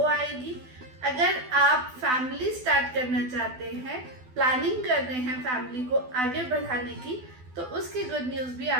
आएगी. अगर आप फैमिली स्टार्ट करना चाहते हैं, प्लानिंग कर रहे हैं फैमिली को आगे बढ़ाने की, तो उसकी गुड न्यूज भी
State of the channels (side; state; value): left; late; 12 ms